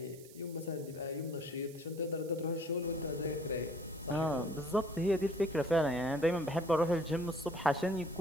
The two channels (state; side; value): noise; right; hiss, 21 dB below the sound